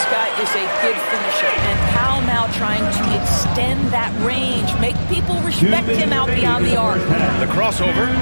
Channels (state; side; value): inverted; both; correlation -1.00